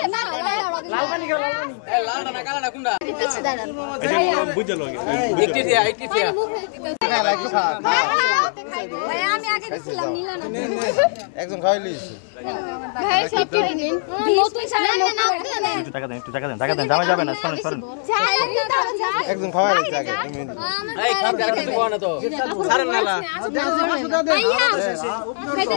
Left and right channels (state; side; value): silent; right; 65 dB below the other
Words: না লাল পানি খাও লাল পানি এ লালটা না কালাটা কোনটা পিছে দাঁড়ান ভাইয়া বুঝে লগে একটি দিয়া মুখে ভাইয়া আমি আগে দিছিলাম নিলা না একদম খাইলিস একটু নিন নতুন সারা টাকা দেন টাকা দেন দামে যাবে না সরেন সরেন একদম খাওয়াইলিস আগে